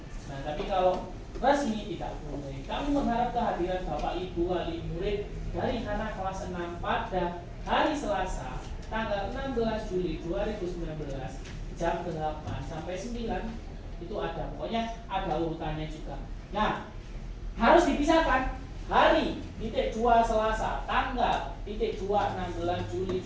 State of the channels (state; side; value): identical; both; correlation 1.00